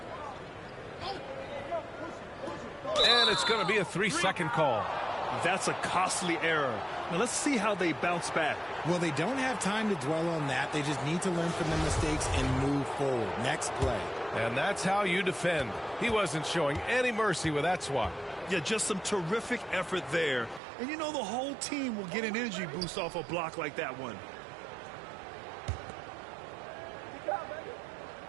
And it's going to be a 3-second call. That's a costly error. Now let's see how they bounce back. Well, they don't have time to dwell on that. They just need to learn from their mistakes and move forward. Next play. And that's how you defend. He wasn't showing any mercy with that swat. Yeah, just some terrific effort there. And you know the whole team will get an energy boost off a block like that one.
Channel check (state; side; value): drops out; left; at 20.6 s